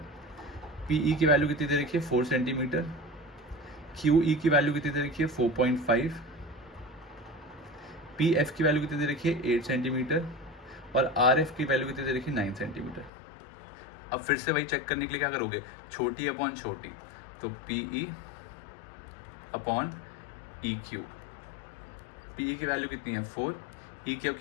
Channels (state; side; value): drops out; right; at 13.1 s